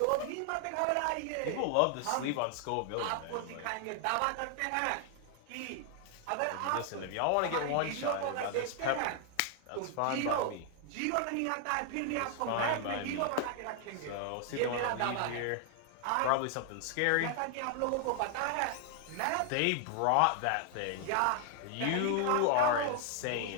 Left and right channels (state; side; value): different; both; correlation 0.00